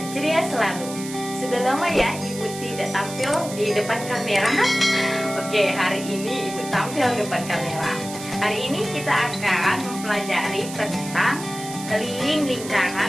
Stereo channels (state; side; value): noise; right; hiss, 12 dB below the sound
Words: ceria selalu. Sudah lama ya Ibu tidak tampil di depan kamera. Oke, hari ini Ibu tampil di depan kamera. Hari ini kita akan mempelajari tentang keliling